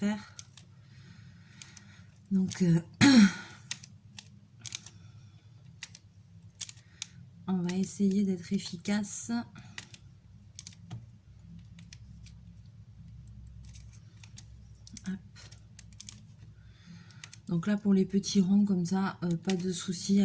Donc on va essayer d'être efficace. Hop. Donc là pour les petits ronds comme ça, pas de souci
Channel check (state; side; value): identical; both; correlation 1.00